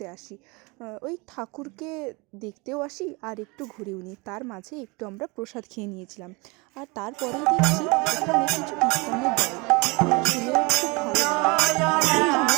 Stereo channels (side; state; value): left; quieter; 27.3 dB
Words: আসি। ওই ঠাকুরকে দেখতেও আসি আর একটু ঘুরেও নিই। তার মাঝে একটু আমরা প্রসাদ খেয়ে নিয়েছিলাম। আর তারপরেই দেখছি এখানে কিছু কীর্তনের দল, শুনেও খুব ভালো লাগলো। আর